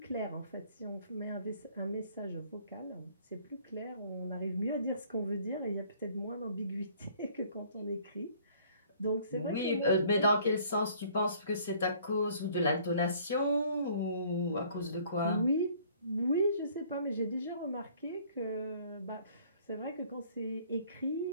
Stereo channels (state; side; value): inverted; both; correlation -0.57